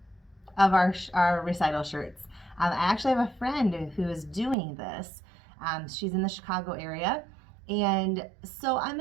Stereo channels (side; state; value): left; drops out; at 4.5 s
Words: of our recital shirts. I actually have a friend who is doing this. She's in the Chicago area, and so I'm